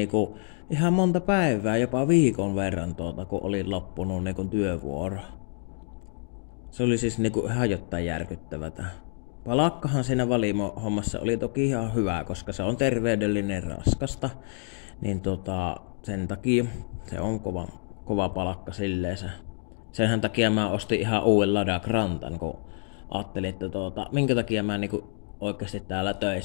ihan monta päivää, jopa viikon verran kun oli loppunut niinku työvuoro. Se oli siis niinku ihan jotain järkyttävätä. Palakkahan siinä valimo-hommassa oli toki ihan hyvä, koska se on terveydellinen raskasta. Niin sen takia se on kova palakka silleensä. Senhän takia mä ostin ihan uuden Lada Grantan, kun ajattelin, että minkä takia mä niinku oikeasti täällä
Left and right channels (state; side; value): silent; right; 60 dB below the other